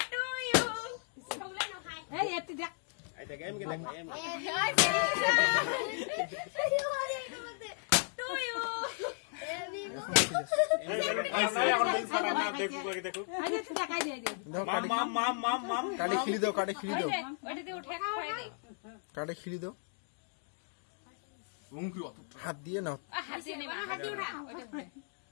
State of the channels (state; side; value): silent; right; 54 dB below the other